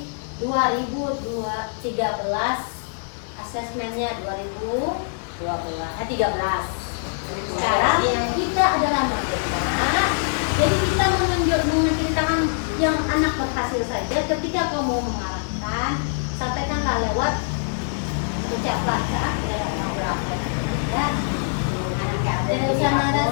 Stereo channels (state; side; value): silent; right; digital silence